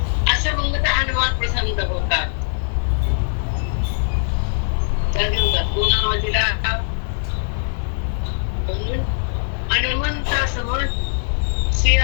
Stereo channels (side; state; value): right; silent; digital silence